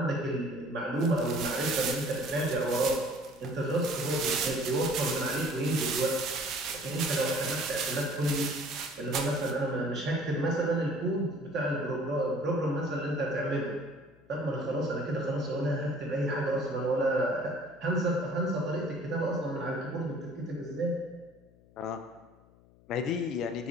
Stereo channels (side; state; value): left; noise; hum, 27 dB below the sound